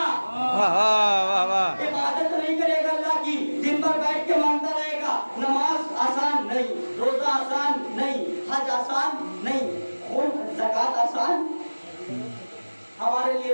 عبادت نہیں کرے گا اللہ کی، دن بھر بیٹھ کے مانگتا رہے گا۔ نماز آسان نہیں، روزہ آسان نہیں، حج آسان نہیں، زکوٰۃ آسان ہمارے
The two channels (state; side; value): inverted; both; correlation -1.00